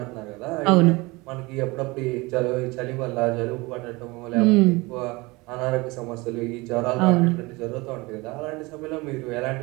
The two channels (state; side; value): quieter; left; 23.8 dB